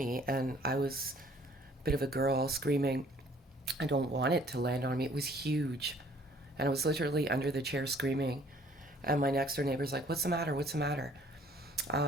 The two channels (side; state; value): both; normal; correlation 0.58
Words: and I was a bit of a girl screaming, I don't want it to land on me. It was huge. And I was literally under the chair screaming. And my next door neighbor's like, what's the matter? What's the matter?